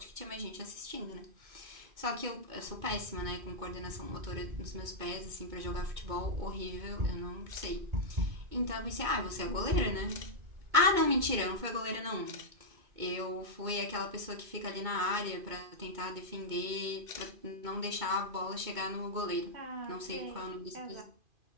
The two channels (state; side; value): late; left; 2.2 ms